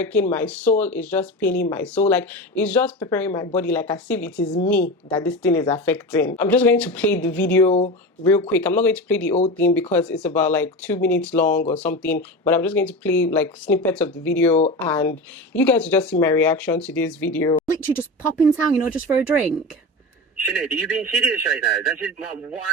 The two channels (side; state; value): both; normal; correlation 0.25